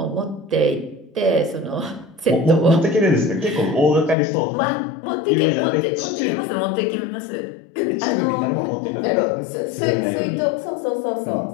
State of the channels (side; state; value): right; drops out; at 4.2 s